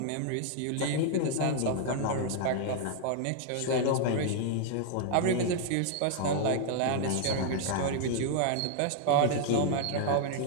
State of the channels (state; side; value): different; both; correlation -0.01